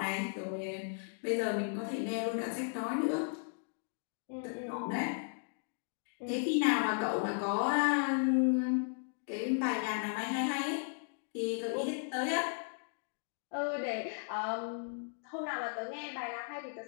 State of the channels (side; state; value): right; silent; digital silence